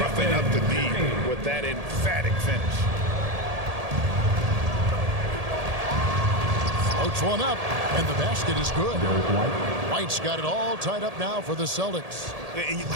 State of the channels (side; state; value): left; late; 1.8 ms